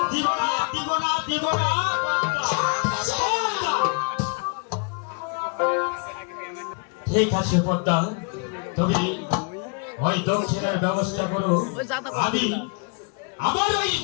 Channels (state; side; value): quieter; right; 35.0 dB